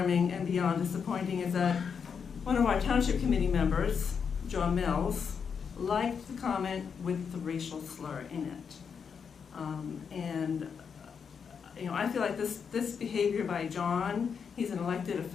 and beyond disappointing is that one of our township committee members, John Mills, liked the comment with the racial slur in it. I feel like this behavior by John, he's an elected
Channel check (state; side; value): quieter; right; 6.5 dB